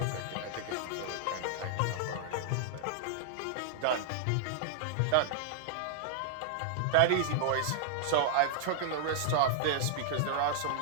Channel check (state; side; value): different; both; correlation -0.01